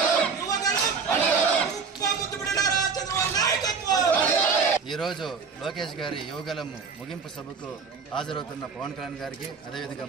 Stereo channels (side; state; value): left; quieter; 5.3 dB